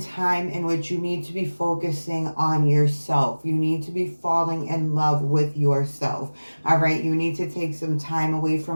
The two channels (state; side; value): inverted; both; correlation -1.00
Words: time in which you need to be focusing on yourself. You need to be falling in love with yourself. All right. You need to take some time away